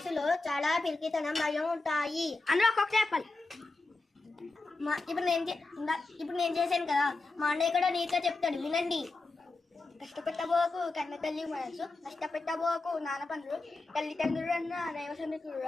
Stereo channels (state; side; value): quieter; right; 3.4 dB